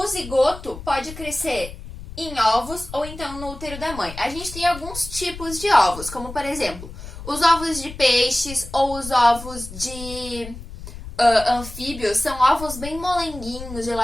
zigoto pode crescer em ovos ou então no útero da mãe. A gente tem alguns tipos de ovos, como por exemplo, os ovos de peixes ou os ovos de anfíbios, são ovos bem molenguinhos,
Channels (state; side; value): noise; left; rumble, 12 dB below the sound